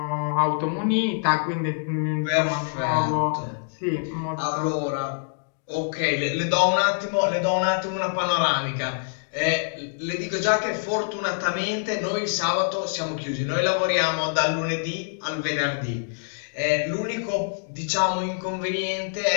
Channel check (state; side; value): silent; right; digital silence